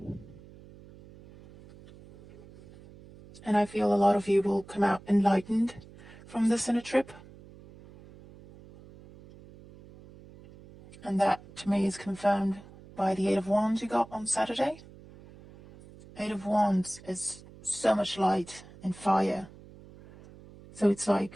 And I feel a lot of you will come out enlightened from this inner trip. And that, to me, is confirmed by the Eight of Wands you got on Saturday. Eight of Wands is so much light and fire. So it's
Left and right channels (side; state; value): right; noise; hum, 21 dB below the sound